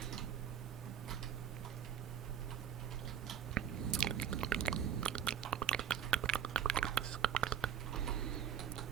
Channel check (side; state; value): left; quieter; 8.8 dB